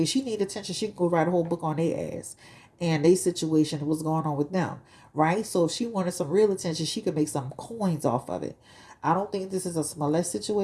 She need attention. She can go write a whole book on their ass and their situation, what's going on with them, right? So if she wanted some real attention, she could make some coins off of it. I don't think this is a Smollett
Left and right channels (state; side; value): identical; both; correlation 1.00